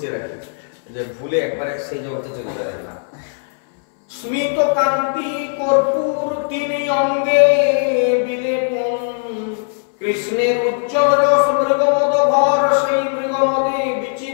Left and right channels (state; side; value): silent; right; 65 dB below the other